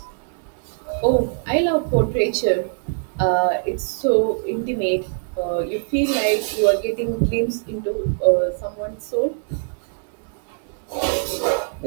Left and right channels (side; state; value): left; silent; 64 dB below the other